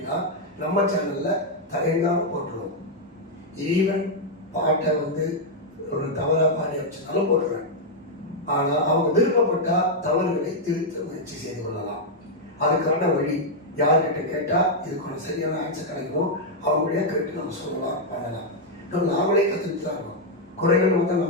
நம்ம சேனலில் தயங்காமல் போட்டுருவோம். ஈவன் பாட்டை வந்து ஒரு தவறாக பாடி வச்சுனாலும் போட்டுருவேன். ஆனால் அவங்க விருப்பப்பட்டால் தவறுகளை திருத்த முயற்சி செய்து கொள்ளலாம். அதுக்கான வழி யார்கிட்ட கேட்டால் இதுக்கான சரியான ஆன்சர் கிடைக்கும், அவங்களே கேட்டு நம்ம சொல்லலாம், பண்ணலாம். நாமளே கற்றுக்கிட்டு தான் இருக்கோம். குறைகள் வந்து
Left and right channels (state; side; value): normal; both; correlation -0.03